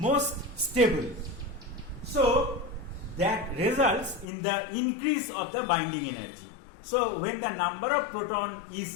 stable. So that results in the increase of the binding energy. So when the number of proton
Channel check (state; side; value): drops out; right; at 4.2 s